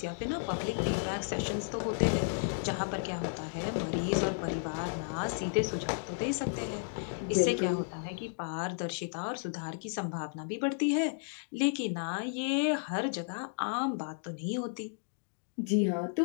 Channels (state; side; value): silent; right; digital silence